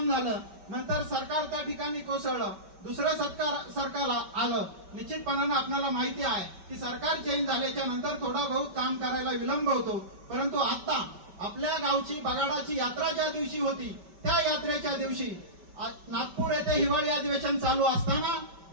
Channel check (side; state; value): left; late; 5.2 ms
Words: झालं. नंतर सरकार त्या ठिकाणी कोसळलं. दुसरं सरकार आलं. निश्चितपणानं आपल्याला माहिती आहे की सरकार चेंज झाल्याच्या नंतर थोडा बहुत काम करायला विलंब होतो. परंतु आता आपल्या गावची बगाडाची यात्रा ज्या दिवशी होती त्या यात्रेच्या दिवशी नागपूर येथे हिवाळी अधिवेशन चालू असताना